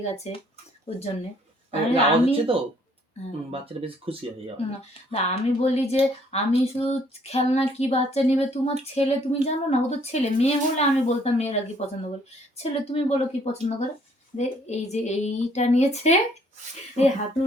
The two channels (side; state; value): both; normal; correlation 0.63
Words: গেছে ওর জন্যে। বাচ্চাটা বেশ খুশি হয়। না আমি বলি যে আমি শুধু খেলনা কি বাচ্চা নেবে, তোমার ছেলে তুমি জানো না, ও তো ছেলে। মেয়ে হলে আমি বলতাম মেয়েরা কি পছন্দ করে, ছেলে তুমি বলো কি পছন্দ করে। এই যে এইটা নিয়েছে, এই